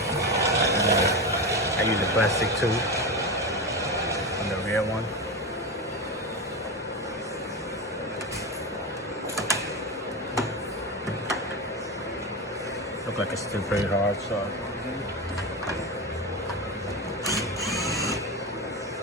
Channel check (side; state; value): both; normal; correlation 0.19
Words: I use a plastic tube on the rear one. Look like it's still pretty hard, so.